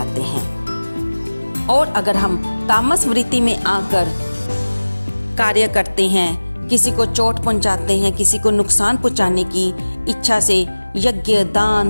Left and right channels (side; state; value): both; inverted; correlation -1.00